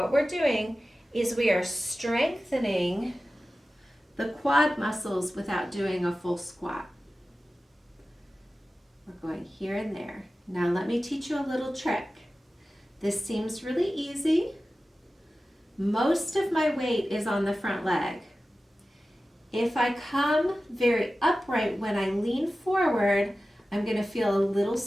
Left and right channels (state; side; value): normal; both; correlation 0.95